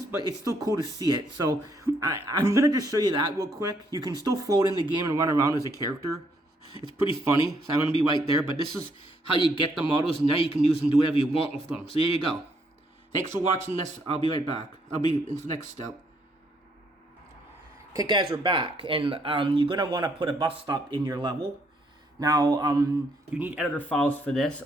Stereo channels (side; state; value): both; normal; correlation 0.71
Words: but it's still cool to see it. So I'm going to just show you that real quick. You can still float in the game and run around as a character. It's pretty funny. So I'm going to be right there. But this is how you get the models, and now you can use them, do whatever you want with them. So there you go. Thanks for watching this. I'll be right back. I'll be in the next step. Okay, guys, we're back, and you're going to want to put a bus stop in your level. Now, you need editor files for this,